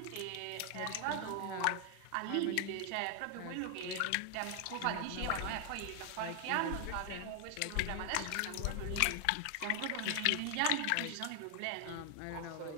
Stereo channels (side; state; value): both; different; correlation 0.01